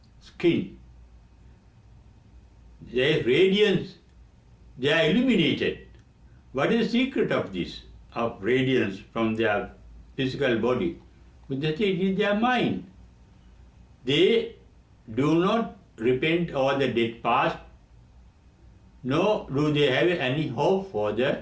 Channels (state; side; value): identical; both; correlation 1.00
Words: skin. Their radiance, they are illuminated. What is the secret of this, of radiance from their physical body? Buddha said it is their mind. They do not repent over the dead past, nor do they have any hope for